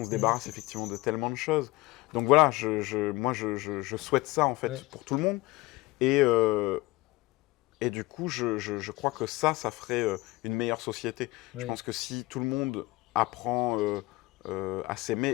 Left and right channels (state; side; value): quieter; right; 20.4 dB